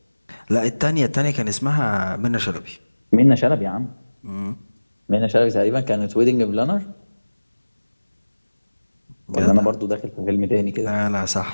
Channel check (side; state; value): both; inverted; correlation -1.00